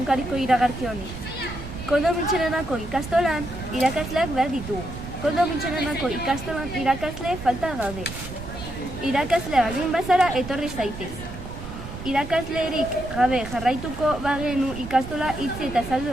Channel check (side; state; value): right; noise; rumble, 11 dB below the sound